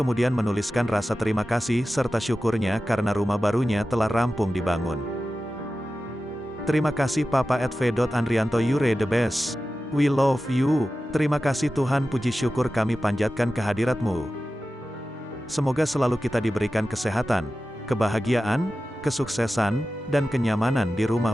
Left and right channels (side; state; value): both; normal; correlation 0.94